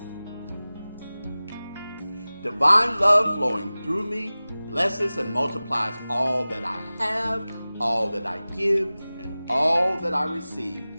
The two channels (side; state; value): both; inverted; correlation -0.98